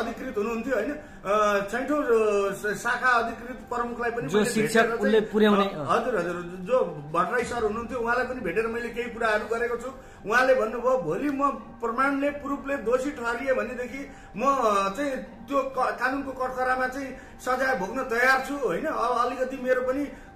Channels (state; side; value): identical; both; correlation 1.00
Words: हुनुहुन्थ्यो हैन, छैटौं शाखा प्रमुखलाई पनि जो शिक्षक उनले पुर्याउने हजुर जो भट्टराई सर हुनुहुन्थ्यो उहाँलाई पनि भेटेर मैले केही कुराहरू गरेको छु। उहाँले भन्नुभयो भोलि म प्रमाणले प्रुफले दोषी ठहरिए भनेदेखि म चाहिँ त्यो कानुनको कठघरामा चाहिँ सजाय भोग्न तयार छु होइन। अब अलिकति मेरो पनि